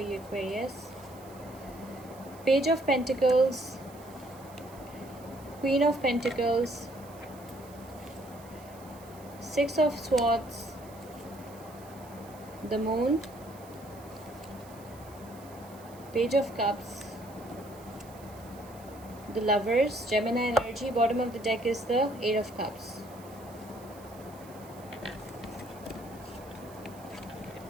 Aquarius. Page of Pentacles, Queen of Pentacles, Six of Swords, the Moon, Page of Cups, the Lovers, Gemini energy. Bottom of the deck is the Eight of Cups.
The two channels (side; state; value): right; noise; hiss, 23 dB below the sound